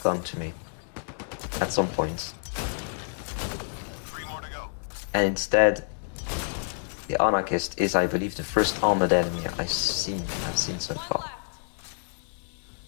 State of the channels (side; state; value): right; silent; 59 dB below the other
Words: come to me at some point. 3 more to go. And instead, the anarchist is, I believe, the first armored enemy I've seen so far.